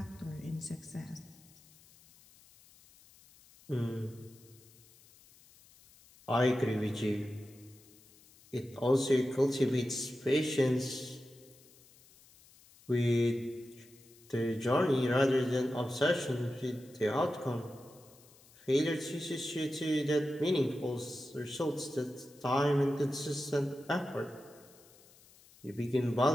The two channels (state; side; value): noise; left; hiss, 26 dB below the sound